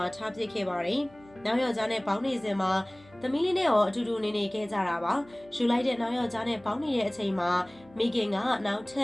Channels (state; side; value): noise; left; hum, 26 dB below the sound